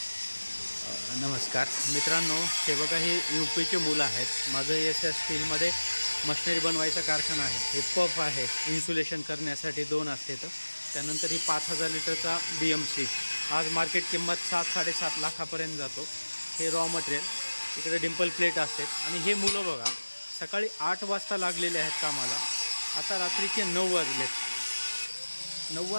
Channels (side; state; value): both; inverted; correlation -1.00